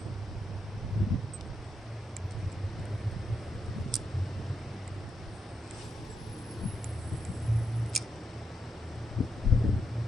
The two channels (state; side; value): normal; both; correlation 0.83